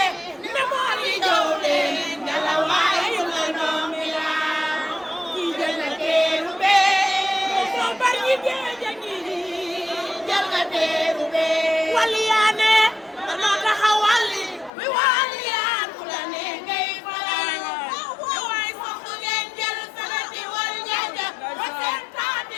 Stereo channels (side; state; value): right; drops out; at 14.7 s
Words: ne moo li jow leen ngala waaye la noomi la kii jël na teeru bee moo bari ñi géej a ngi jël nga teeru bee waliyaane danoo taxawali mi waliyaan ku la ne ngay faral waaye soxna ngeen jël sanati wal njaaja ba seen taati